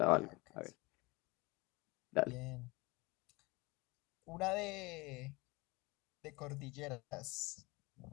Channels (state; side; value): quieter; right; 24.2 dB